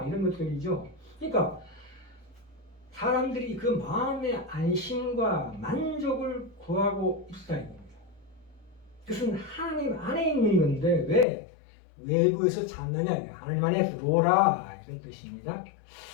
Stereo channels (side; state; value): right; drops out; at 11.2 s